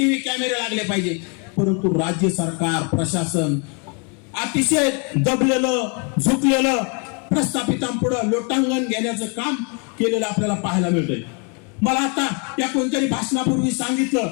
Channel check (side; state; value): right; quieter; 34.9 dB